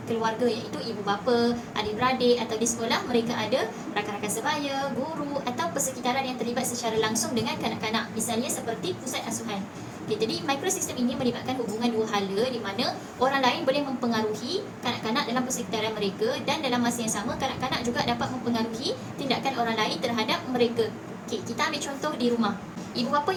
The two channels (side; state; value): both; identical; correlation 1.00